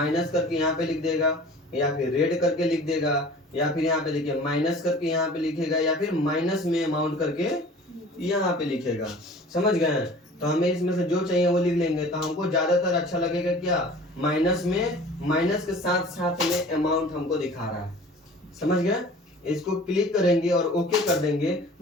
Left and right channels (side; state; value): both; normal; correlation 0.45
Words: करके यहाँ पे लिख देगा, या फिर रेड करके लिख देगा, या फिर यहाँ पे देखिए माइनस करके यहाँ पे लिखेगा, या फिर माइनस में अमाउंट करके यहाँ पे लिखेगा, समझ गए। तो हमें इसमें से जो चाहिए वो लिख लेंगे। तो हमको ज्यादातर अच्छा लगेगा क्या, माइनस में, माइनस के साथ साथ में अमाउंट हमको दिखा रहा है, समझ गए। इसको क्लिक करेंगे और ओके कर देंगे।